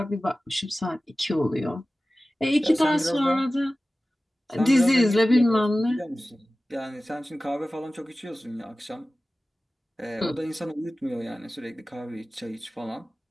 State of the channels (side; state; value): both; normal; correlation 0.96